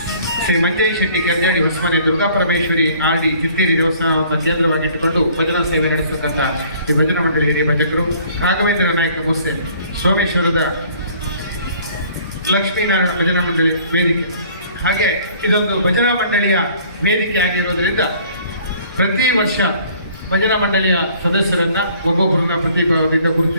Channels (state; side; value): inverted; both; correlation -0.56